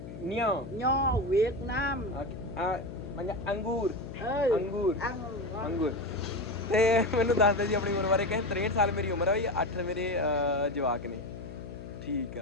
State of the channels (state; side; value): noise; left; hum, 12 dB below the sound